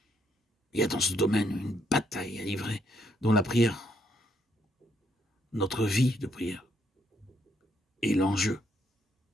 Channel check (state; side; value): normal; both; correlation 0.73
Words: Il y a dans ce domaine une bataille à livrer, dont la prière, notre vie de prière, est l'enjeu.